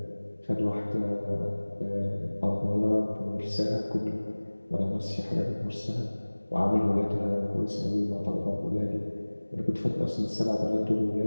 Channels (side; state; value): both; inverted; correlation -1.00